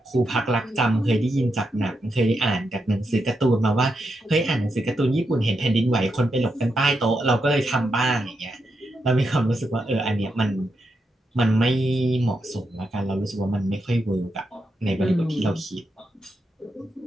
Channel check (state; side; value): normal; both; correlation 0.84